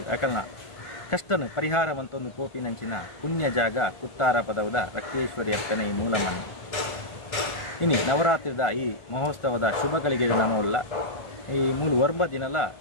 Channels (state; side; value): late; right; 1.4 ms